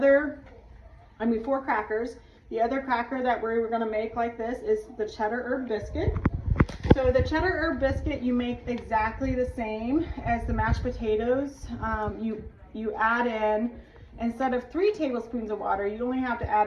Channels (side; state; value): both; identical; correlation 1.00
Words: 4 crackers. The other cracker that we're gonna make like this is the Cheddar Herb Biscuit. So the Cheddar Herb Biscuit, you make exactly the same as the mashed potatoes. You add in, instead of 3 tablespoons of water, you only have to add